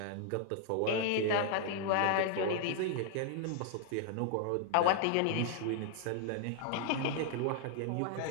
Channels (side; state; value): both; different; correlation 0.00